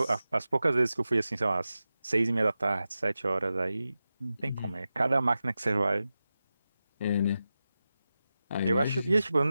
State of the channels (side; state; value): both; inverted; correlation -0.93